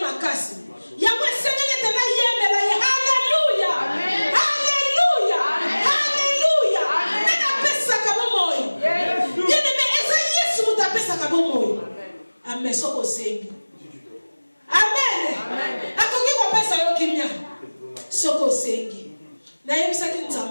makasi. Yango esengeli tena yembela ye. Hallelujah. Hallelujah. Hallelujah. Nene apesa kabomoyo. Nene me eza Yesu mutu apesa kabomoyo. Amen. Soko sengi. Amen. Akoki kopesa yo kimia. Soko sengi. Na yebisaki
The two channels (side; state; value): both; inverted; correlation -1.00